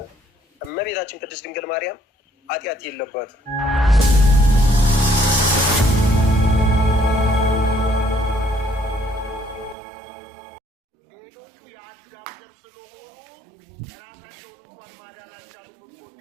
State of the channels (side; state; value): left; drops out; at 9.8 s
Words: እመቤታችን ቅድስት ድንግል ማርያም ኃጢአት የለባትም። ሌሎቹ የአዳም ዘር ስለሆኑ ራሳቸውን እንኳን ማዳን አልቻሉም፣ እንኳን